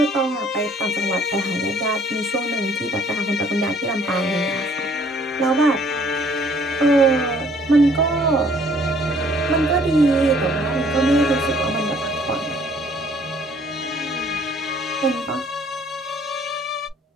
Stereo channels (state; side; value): normal; both; correlation 0.59